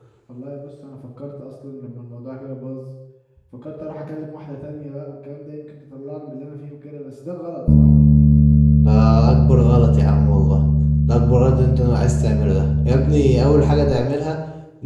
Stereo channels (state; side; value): identical; both; correlation 1.00